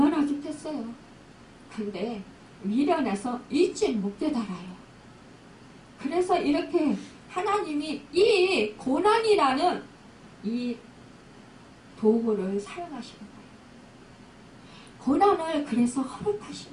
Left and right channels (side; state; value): both; identical; correlation 1.00